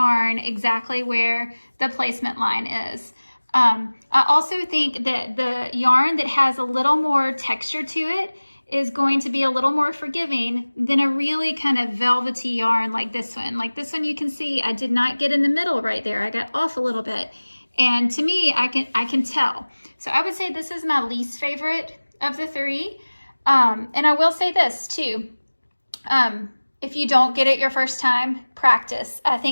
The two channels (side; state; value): both; inverted; correlation -1.00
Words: exactly where the placement line is. I also think that the yarn that has a little more texture to it is going to be a little more forgiving than a really kind of velvety yarn like this one. Like this one, you can see I did not get in the middle right there. I got off a little bit. And to me, I can tell. So I would say this is my least favorite of the 3. And I will say this too. If you don't get it your first time, practice. I